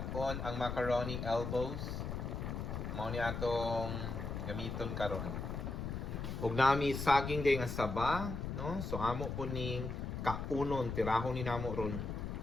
ang macaroni elbows. Mao ni atong gamiton karon. Ug nami saging day nga saba, no? So amo po ning kaunon tirahon ni namo ron.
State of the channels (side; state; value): left; noise; rumble, 4 dB below the sound